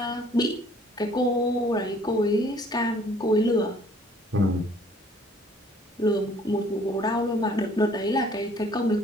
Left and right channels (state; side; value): normal; both; correlation 0.58